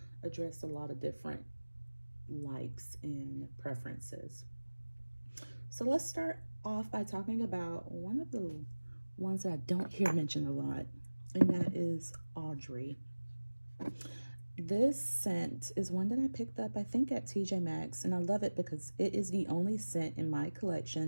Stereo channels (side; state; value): both; inverted; correlation -1.00